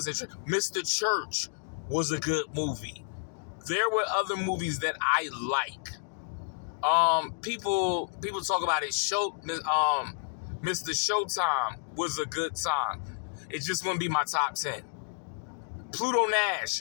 interesting. Mr. Church was a good movie. There were other movies that I like. People talk about it. Mr. Showtime was a good time. It just wouldn't be my top 10. Pluto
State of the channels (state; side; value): silent; right; digital silence